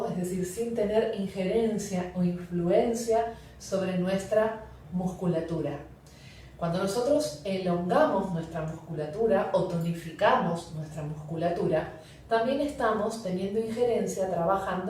es decir, sin tener injerencia o influencia sobre nuestra musculatura. Cuando nosotros elongamos nuestra musculatura o tonificamos nuestra musculatura, también estamos teniendo injerencia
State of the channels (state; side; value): identical; both; correlation 1.00